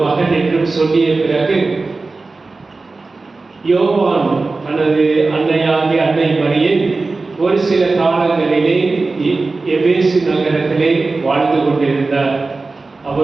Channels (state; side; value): quieter; left; 3.7 dB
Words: மகன் என்றும் சொல்லிய பிறகு யோவான் தனது அன்னையாகிய அன்னை மரியை ஒரு சில காலங்களிலே எபேசு நகரத்திலே வாழ்ந்து கொண்டிருந்தார்.